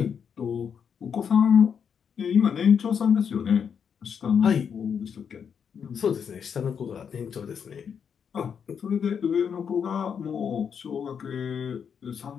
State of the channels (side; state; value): right; quieter; 7.2 dB